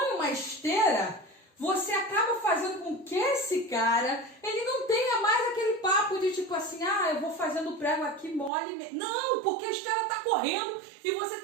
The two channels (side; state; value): left; drops out; at 8.5 s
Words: uma esteira, você acaba fazendo com que esse cara, ele não tenha mais aquele papo de tipo assim, ah, eu vou fazendo o prego aqui mole. Não, porque a esteira tá correndo e você